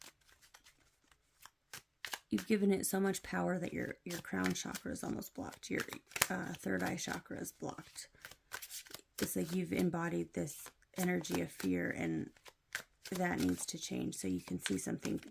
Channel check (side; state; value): both; identical; correlation 1.00